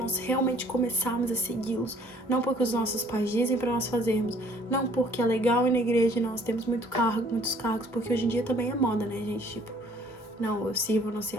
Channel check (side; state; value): both; normal; correlation 0.58